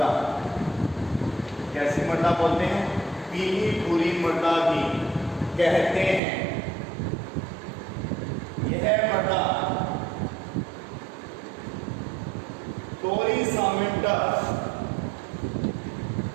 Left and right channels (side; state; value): left; drops out; at 6.2 s